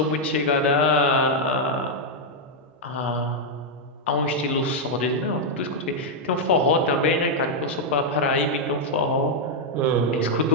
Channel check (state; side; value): normal; both; correlation -0.02